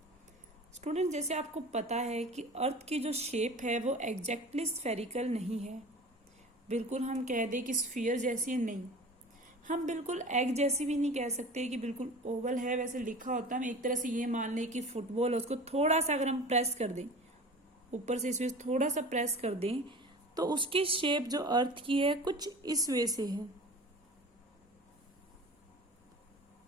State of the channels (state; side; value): normal; both; correlation 0.38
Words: Student जैसे आपको पता है कि अर्थ की जो शेप है वो एग्जैक्टली स्फेरिकल नहीं है। बिल्कुल हम कह दें कि स्फीयर जैसी नहीं, हम बिल्कुल एग जैसी भी नहीं कह सकते कि बिल्कुल ओवल है वैसे लिखा होता है। हम एक तरह से ये मान लें कि फुटबॉल है, उसको थोड़ा सा अगर हम प्रेस कर दें, ऊपर से इसमें थोड़ा सा प्रेस कर दें तो उसकी शेप जो अर्थ की है कुछ इस वे से है।